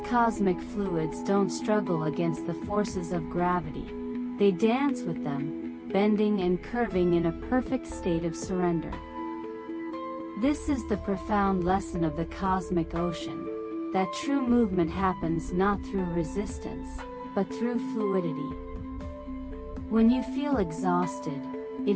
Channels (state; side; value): identical; both; correlation 1.00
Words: cosmic fluids don't struggle against the forces of gravity, they dance with them, bending and curving in a perfect state of surrender. This is the profound lesson of the cosmic ocean, that true movement happens not through resistance, but through fluidity. When you feel exhausted,